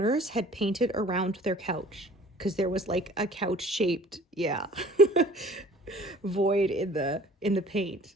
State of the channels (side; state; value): both; normal; correlation 0.50